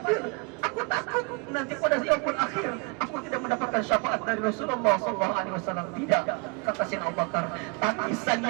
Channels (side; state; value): left; quieter; 30.1 dB